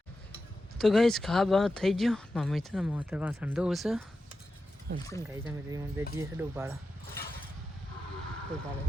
તો ગાઈ ખા બા થઈ ગયો મમ્મી છે ને મોતર વાસણ ધોવું છે અને ગાઈ તમે બે જઈએ છે ડોબાળા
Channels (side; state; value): both; normal; correlation 0.91